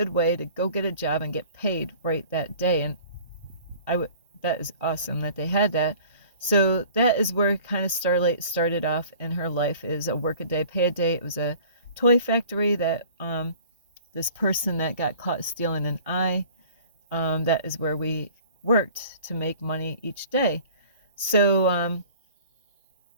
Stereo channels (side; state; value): both; inverted; correlation -0.48